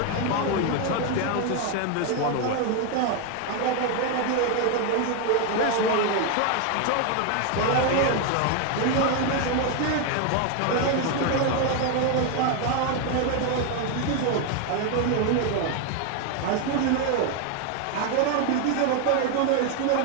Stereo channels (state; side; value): different; both; correlation 0.01